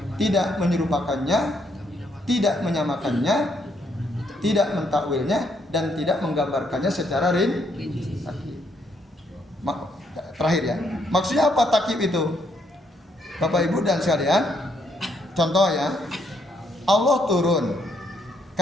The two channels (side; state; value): both; normal; correlation 0.73